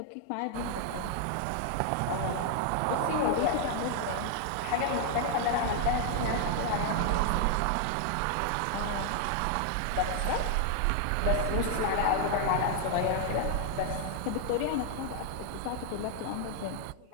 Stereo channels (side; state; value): both; different; correlation 0.00